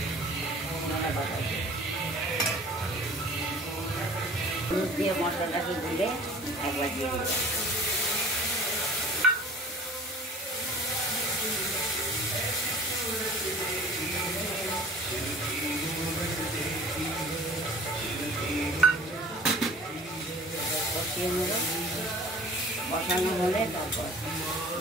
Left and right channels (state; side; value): normal; both; correlation 0.46